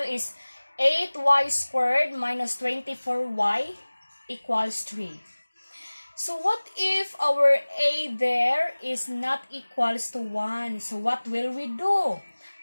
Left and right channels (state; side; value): inverted; both; correlation -1.00